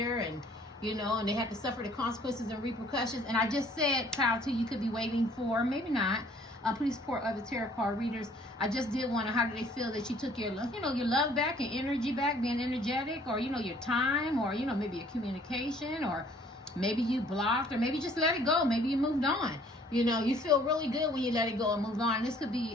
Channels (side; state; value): both; normal; correlation 0.58